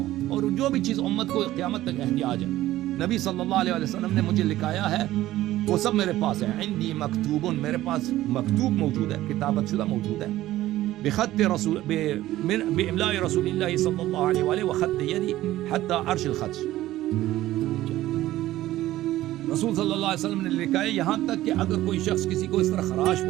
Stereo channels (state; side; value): quieter; left; 15.2 dB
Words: اور جو بھی چیز امت کو قیامت تک احتیاج ہے، نبی صلی اللہ علیہ وسلم نے مجھے لکھایا ہے، وہ سب میرے پاس ہے. عندی مکتوب، میرے پاس مکتوب موجود ہے، کتابت شدہ موجود ہے. بخط رسول باملاء رسول اللہ صلی اللہ علیہ وآلہ وخط یدی حتی عرش الخط. رسول صلی اللہ علیہ وسلم نے لکھا ہے یہاں تک کہ اگر کوئی شخص کسی کو اس طرح خراش